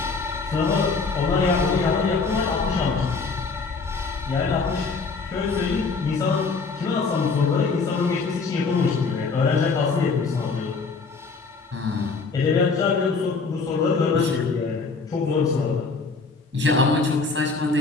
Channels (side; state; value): right; quieter; 4.5 dB